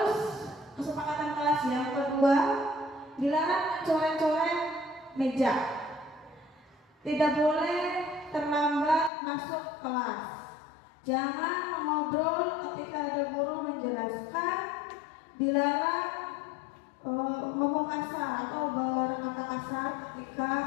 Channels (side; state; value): right; drops out; at 9.1 s